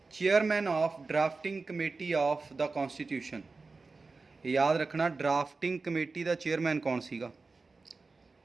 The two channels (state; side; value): quieter; left; 4.0 dB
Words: chairman of drafting committee of the constitution. याद रखना, ड्राफ्टिंग कमेटी का चेयरमैन कौन सीगा?